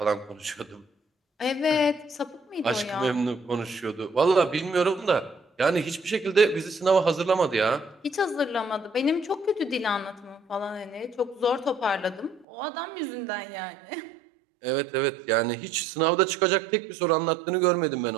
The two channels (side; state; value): left; drops out; at 12.5 s